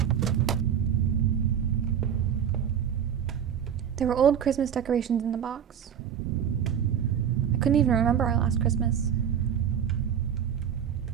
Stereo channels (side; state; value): left; quieter; 8.6 dB